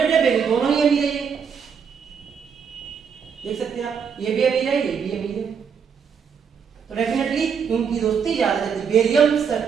या बेरियम, दोनों ही अमीर है। ये देख सकते हैं आप, ये भी अमीर है, ये भी अमीर है। तो डेफिनेटली इनकी दोस्ती ज्यादा जल्दी,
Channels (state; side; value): quieter; left; 6.7 dB